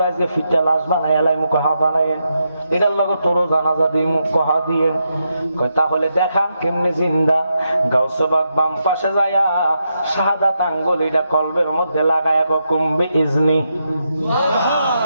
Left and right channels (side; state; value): both; inverted; correlation -0.83